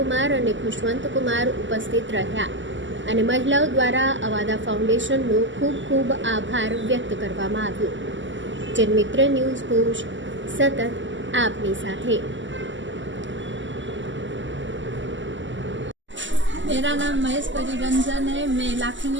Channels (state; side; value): late; left; 0.54 ms